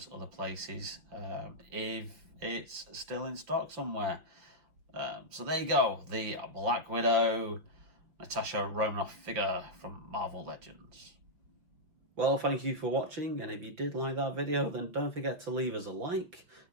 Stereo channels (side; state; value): left; late; 6.0 ms